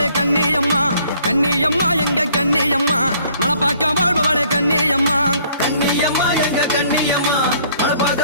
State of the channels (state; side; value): inverted; both; correlation -0.60